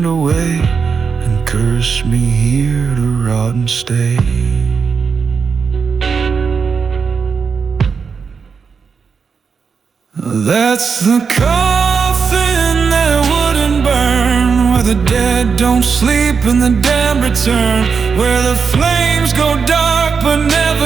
away and cursed me here to rot and stay. That's the coffin that wouldn't burn, where the dead don't sleep and the damned return, where the flames go dark but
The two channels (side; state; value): left; quieter; 5.7 dB